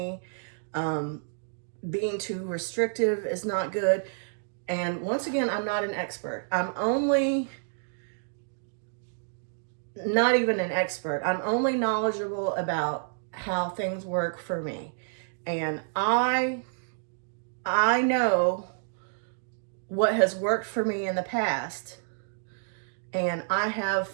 Being too restrictive is not good. And once again, I'm not an expert. I'm only not even an expert. I'm only knowledgeable about how things work for me. And I know what has worked for me in the past. And I have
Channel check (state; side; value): silent; left; digital silence